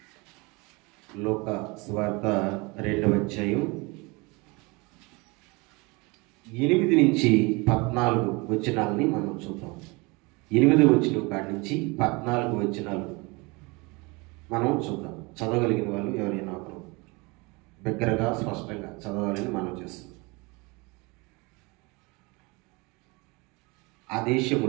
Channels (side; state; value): left; quieter; 26.7 dB